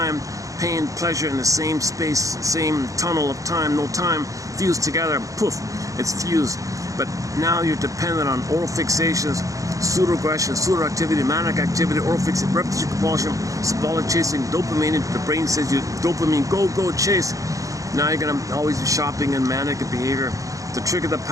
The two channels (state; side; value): late; left; 0.16 ms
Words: Pain, pleasure in the same space, same tunnel of time, no time, fused together, poof, it's fused. But now you're dependent on oral fixations, pseudo-aggression, pseudo-activity, manic activity, oral fixation, repetition, compulsion, symbolic chasing, dopamine. The brain says you dopamine, go, chase. Now you're going to always be shopping and manic behavior to trigger the